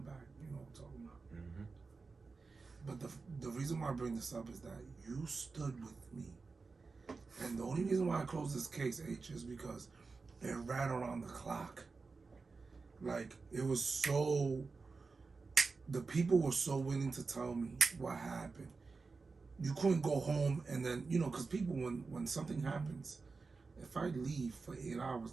You know what I'm talking about. Mm-hmm. But the reason why I bring this up is that you stood with me. And the only reason why I closed this case, H, is because it ran around the clock. Like, it was so... The people were so willing to tell me what happened. You couldn't go home and then, because people, when something happens, if I leave for 8 hours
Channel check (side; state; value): left; quieter; 4.3 dB